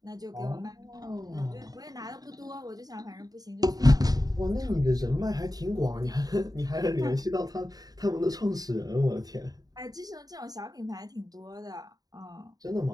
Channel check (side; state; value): left; late; 0.18 ms